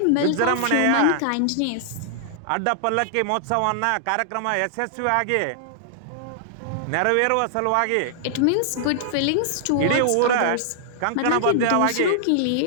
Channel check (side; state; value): both; different; correlation -0.01